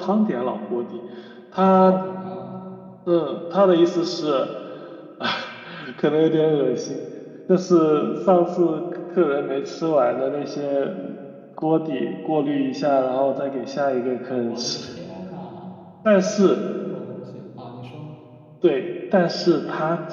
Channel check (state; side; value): identical; both; correlation 1.00